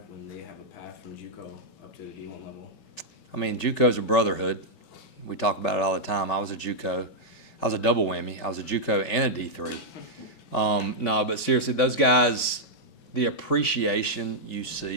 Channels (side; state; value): right; late; 5.2 ms